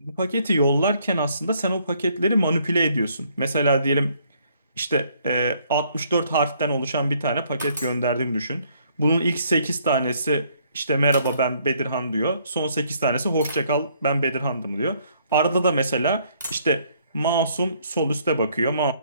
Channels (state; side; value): inverted; both; correlation -0.66